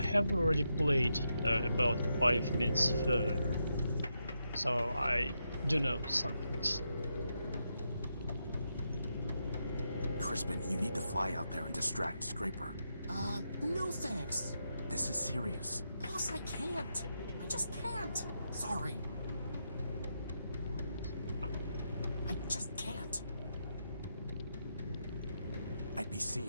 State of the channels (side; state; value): both; inverted; correlation -0.84